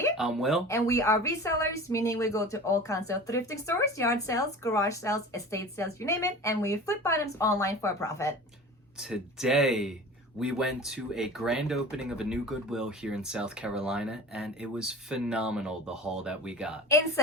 I'm Will. And we are resellers, meaning we go to all kinds of thrifting stores, yard sales, garage sales, estate sales, you name it, and we flip items online for a profit. Today, we went to a grand opening of a new Goodwill here in South Carolina, and it was phenomenal, the haul that we got.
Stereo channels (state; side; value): normal; both; correlation 0.37